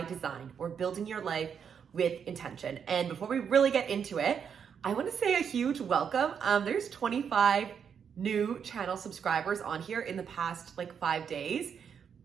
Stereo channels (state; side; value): quieter; left; 7.3 dB